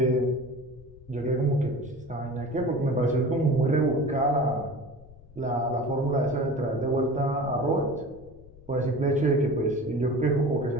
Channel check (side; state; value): left; noise; rumble, 21 dB below the sound